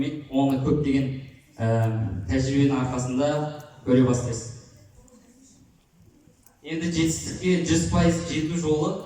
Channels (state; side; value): identical; both; correlation 1.00